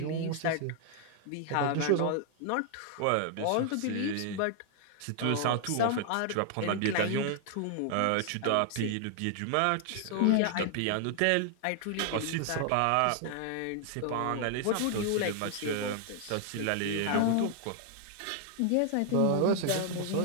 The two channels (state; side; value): different; both; correlation 0.00